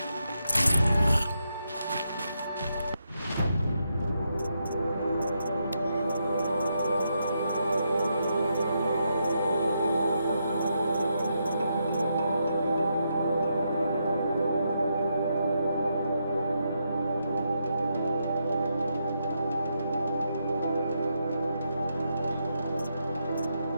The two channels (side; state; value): both; inverted; correlation -0.81